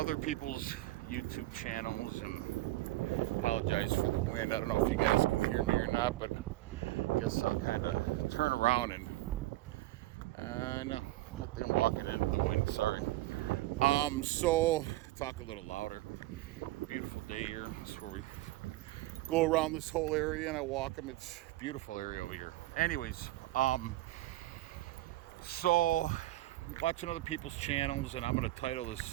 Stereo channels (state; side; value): quieter; left; 17.5 dB